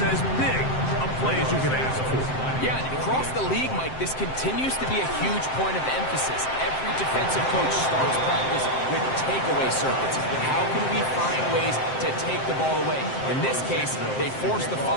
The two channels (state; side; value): late; right; 7.7 ms